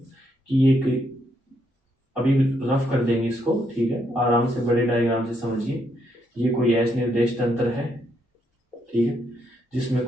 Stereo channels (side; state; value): both; normal; correlation 0.76